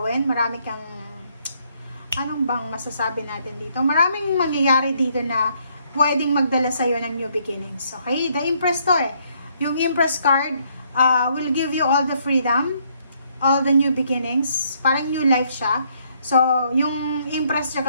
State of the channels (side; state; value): both; inverted; correlation -0.69